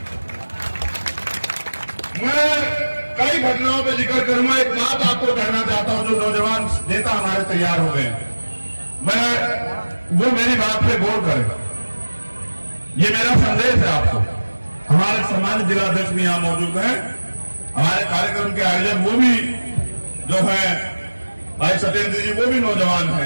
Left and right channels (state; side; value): inverted; both; correlation -1.00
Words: मैं कई घटनाओं पे जिक्र करूंगा। एक बात आपको कहना चाहता हूं, जो नौजवान नेता हमारे तैयार हो गए, वो मेरी बात पे गौर करें। ये मेरा संदेश है आपको। हमारे सम्मानित जिलाध्यक्ष भी यहां मौजूद हैं, हमारे कार्यक्रम के आयोजक वो भी जो है भाई सत्येंद्र जी, वो भी नौजवान